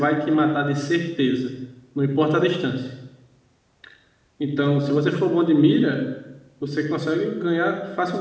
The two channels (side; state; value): both; identical; correlation 1.00